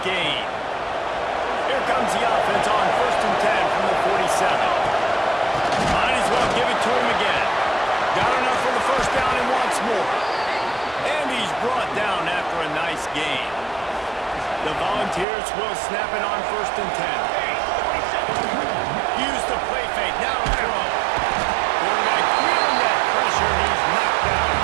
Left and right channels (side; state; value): left; drops out; at 15.2 s